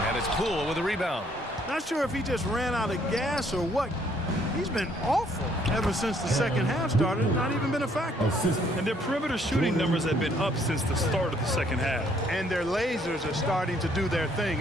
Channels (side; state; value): both; normal; correlation 0.66